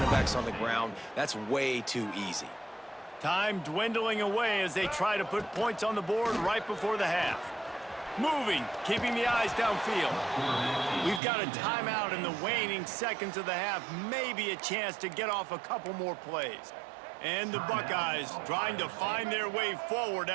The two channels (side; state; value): left; drops out; at 11.2 s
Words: backs on the ground. That's way too easy. Time dwindling away as they try to put points on the board right before the half. Moving, keeping the eyes downfield. We've got a timeout in the waning seconds of the half. Maybe a chance to get off a couple more plays. And the Buckeyes trying to find their way forward